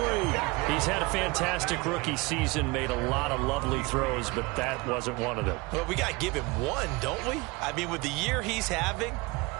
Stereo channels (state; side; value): quieter; left; 24.4 dB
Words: He's had a fantastic rookie season, made a lot of lovely throws, but that wasn't one of them. Well, we got to give him one, don't we? I mean, with the year he's having,